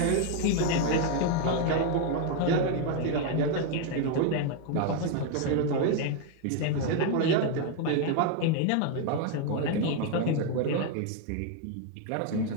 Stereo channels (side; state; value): both; different; correlation 0.01